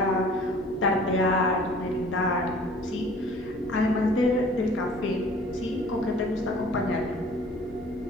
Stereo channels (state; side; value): noise; right; hum, 23 dB below the sound